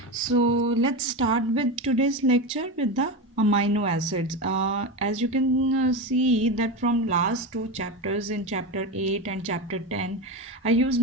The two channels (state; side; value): normal; both; correlation 0.19